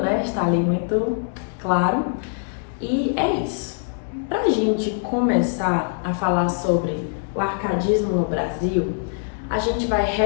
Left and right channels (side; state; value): right; silent; digital silence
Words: né? Está ali muito claro. E é isso. Pra gente começar a falar sobre o arcadismo no Brasil, a gente vai